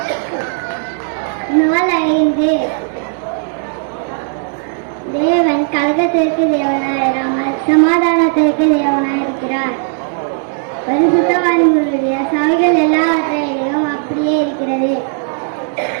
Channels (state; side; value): silent; left; 60 dB below the other